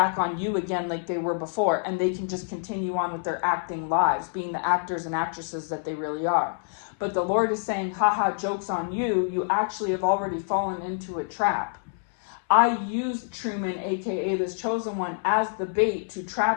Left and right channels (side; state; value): right; silent; 60 dB below the other